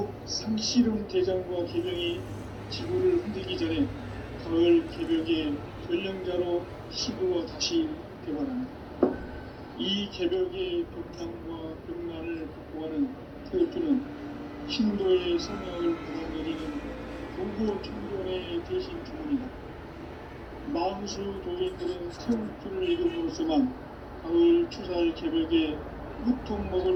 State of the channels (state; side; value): identical; both; correlation 1.00